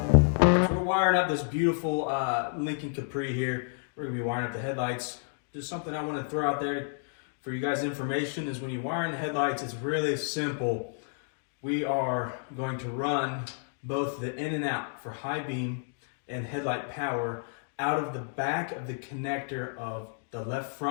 wiring up this beautiful Lincoln Capri here. We're going to be wiring up the headlights. Just something I want to throw out there for you guys' information is when you wire in the headlights, it's really simple. We are going to run both the in and out for high beam and headlight power out of the back of the connector of the left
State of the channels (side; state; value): right; silent; digital silence